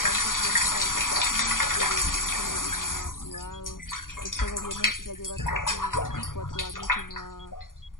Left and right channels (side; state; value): right; late; 0.90 ms